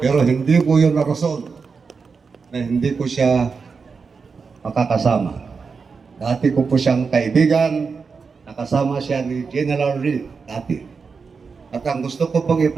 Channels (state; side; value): quieter; left; 5.1 dB